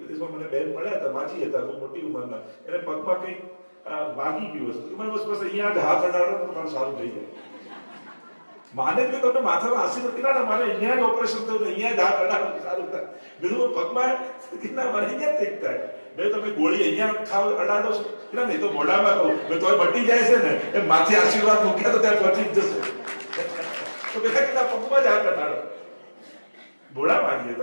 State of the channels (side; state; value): both; inverted; correlation -1.00